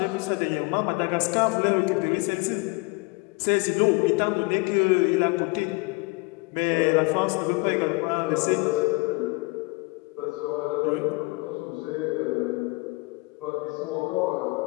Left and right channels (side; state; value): right; quieter; 26.0 dB